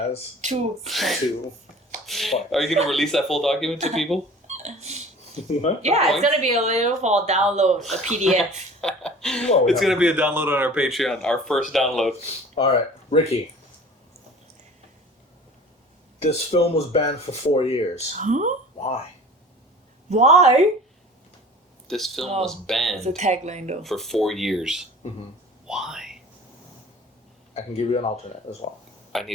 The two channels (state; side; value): normal; both; correlation 0.44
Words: 2. 2 points. Are you gonna release that full document to people? What? Yeah, it's gonna be available for download, a PDF. Whoa, It's no. gonna be a download on our Patreon. Our first download. All right, Ricky. This film was banned for 4 years. Huh? Why? Why? This film Oh, was It's a banned tagline though. for 4 years. Mm-hmm. Why? I can give you an alternate as well. I